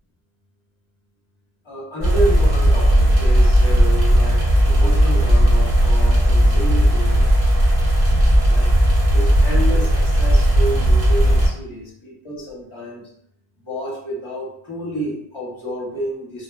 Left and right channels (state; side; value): normal; both; correlation 0.89